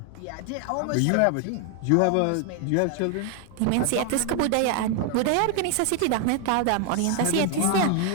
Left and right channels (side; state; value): both; different; correlation 0.00